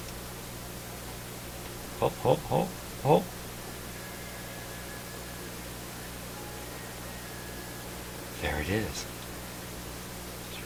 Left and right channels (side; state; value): both; identical; correlation 1.00